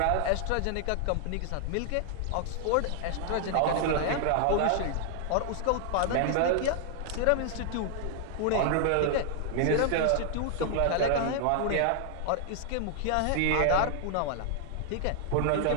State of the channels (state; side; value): different; both; correlation 0.00